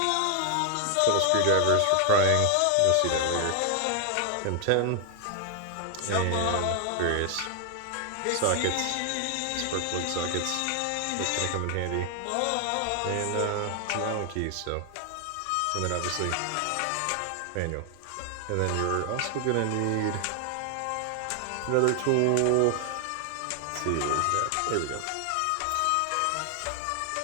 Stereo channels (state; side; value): different; both; correlation 0.00